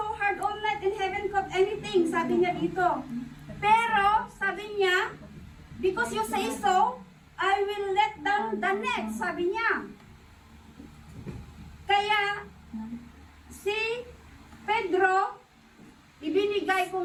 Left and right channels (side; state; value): both; identical; correlation 1.00